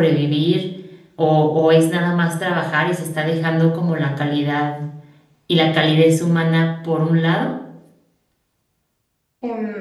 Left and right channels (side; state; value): both; identical; correlation 1.00